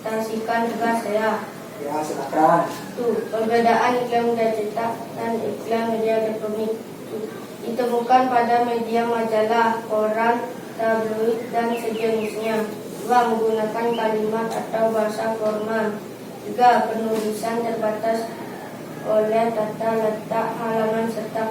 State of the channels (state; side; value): identical; both; correlation 1.00